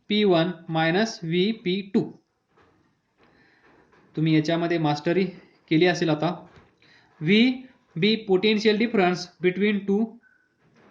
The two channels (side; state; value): both; identical; correlation 1.00